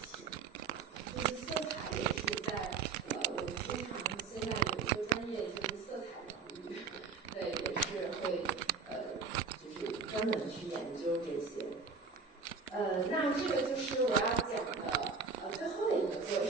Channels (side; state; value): left; quieter; 4.9 dB